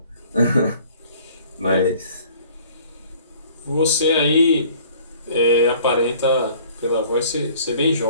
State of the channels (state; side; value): inverted; both; correlation -0.53